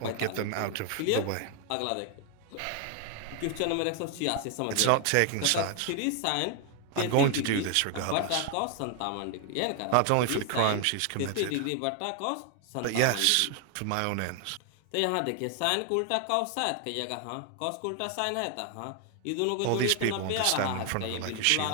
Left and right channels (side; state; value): both; different; correlation 0.00